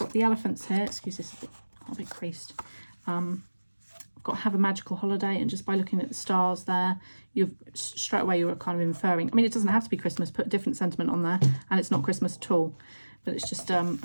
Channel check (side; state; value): both; inverted; correlation -1.00